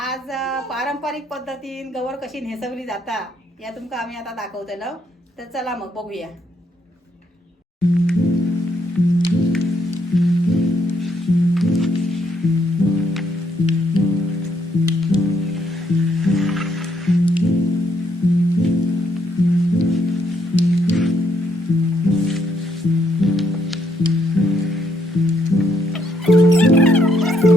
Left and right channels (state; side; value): normal; both; correlation 0.73